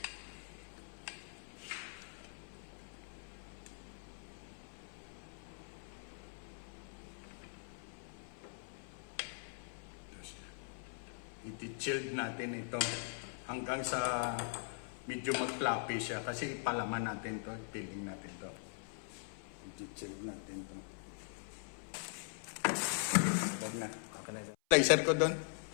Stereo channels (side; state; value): right; silent; 50 dB below the other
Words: I-chilled natin ito hanggang sa medyo mag-fluffy siya kasi ipalaman natin to, peeling natin to. I-chilled natin to. Huwag na. Okay na sir. Laser ko doon.